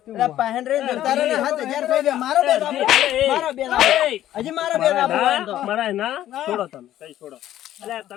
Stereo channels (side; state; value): right; quieter; 12.7 dB